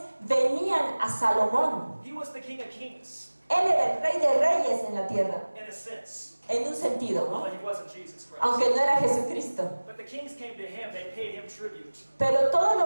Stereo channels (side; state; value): both; inverted; correlation -1.00